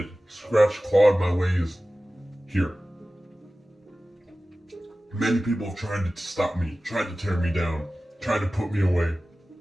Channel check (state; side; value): normal; both; correlation 0.96